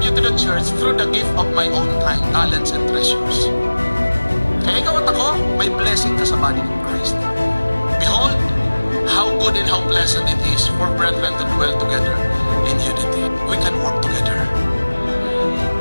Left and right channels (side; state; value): both; inverted; correlation -1.00